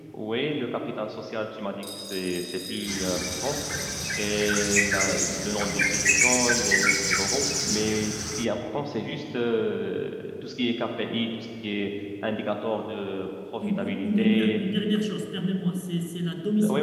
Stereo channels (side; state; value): both; identical; correlation 1.00